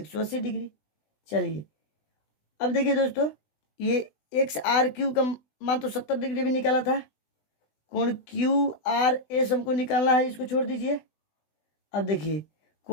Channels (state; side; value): late; right; 20 ms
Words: डिग्री। चलिए अब देखिए दोस्तों, ये एक्स आर क्यू का मान तो 70 डिग्री भी निकाला था, कोण क्यू आर एस हमको निकालना है, इसको छोड़ दीजिए। अब देखिए